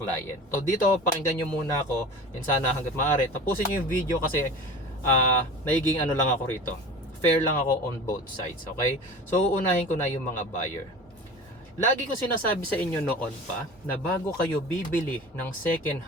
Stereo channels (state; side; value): normal; both; correlation 0.36